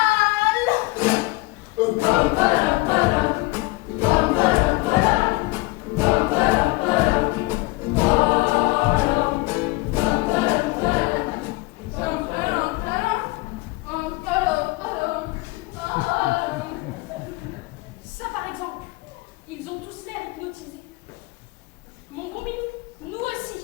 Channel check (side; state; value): right; quieter; 22.7 dB